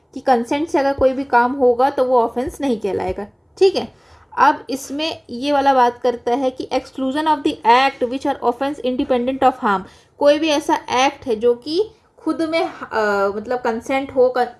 कि कंसेंट से अगर कोई भी काम होगा तो वो ऑफेंस नहीं कहलाएगा, ठीक है। अब इसमें ये वाला बात करता है कि exclusion of the act which are offence independent of harm. कोई भी ऐसा एक्ट है जो कि खुद में मतलब कंसेंट हो,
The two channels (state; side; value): identical; both; correlation 1.00